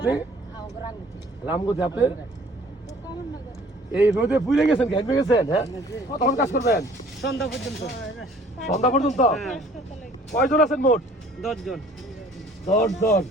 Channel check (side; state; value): both; normal; correlation 0.54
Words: রামগতি। আপনি এই রোদে পুড়ে গেছেন, ঘেমে গেছেন? হ্যাঁ, কতক্ষণ কাজ করবেন? সন্ধ্যা পর্যন্ত। সন্ধ্যা পর্যন্ত? হ্যাঁ। কয়জন আছেন মোট? 10 জন। 10 জন।